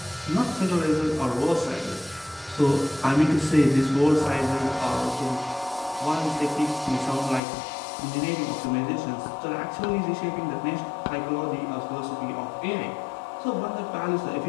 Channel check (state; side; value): drops out; right; at 7.4 s